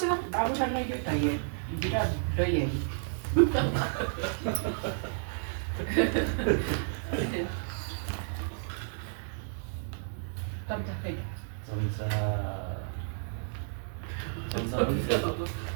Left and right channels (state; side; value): silent; left; digital silence